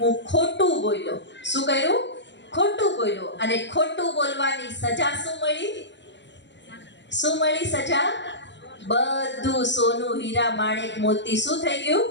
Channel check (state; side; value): late; right; 0.52 ms